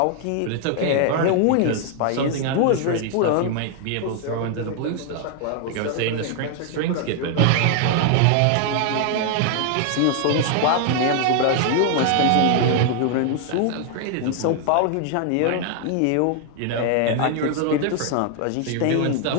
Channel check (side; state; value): both; different; correlation 0.00